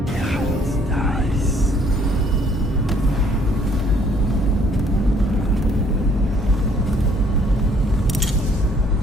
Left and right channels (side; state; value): both; normal; correlation 0.63